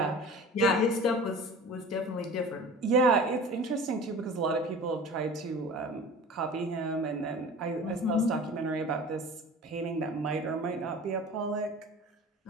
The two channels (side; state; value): both; normal; correlation 0.39